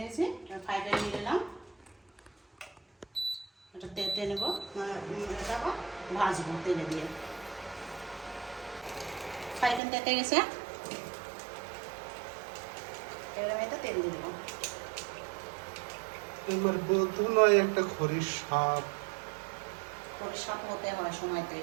ফ্রাই প্যান নিয়ে নিলাম। এটা তেতে নেব, এটা আবার ভাজবো তেলে দিয়ে। ফ্রাই প্যান তেতে গেছে, এবার আমি এটা তেল দিয়ে দেবো। এবার বলতো নয় একটা খরির সাপ। খরির সাপ হতে হয় সময়তে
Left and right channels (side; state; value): left; drops out; at 9.8 s